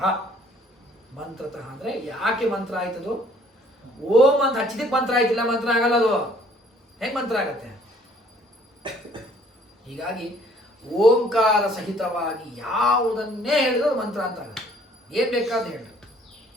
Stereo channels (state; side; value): normal; both; correlation 0.59